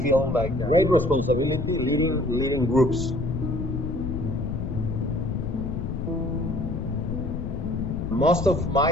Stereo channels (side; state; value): left; noise; rumble, 3 dB below the sound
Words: feel like great responsibility leading groups. Most of